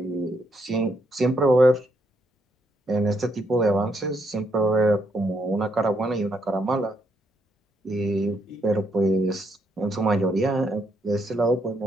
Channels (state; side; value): normal; both; correlation 0.76